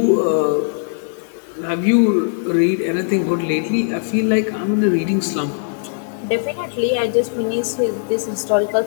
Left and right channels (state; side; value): silent; right; digital silence